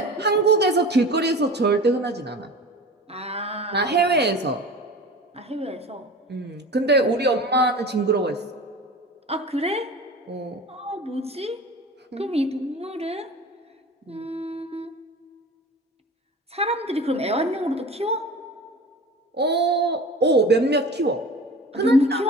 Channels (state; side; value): normal; both; correlation 0.36